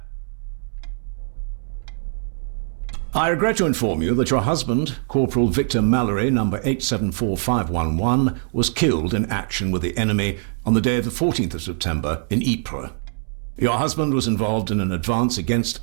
I regret to inform you that your husband, Corporal Victor Mallory, number 874511, was killed in action with the enemy on the day of the 14th of September in Ypres. Your husband was involved in an advance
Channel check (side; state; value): left; silent; 64 dB below the other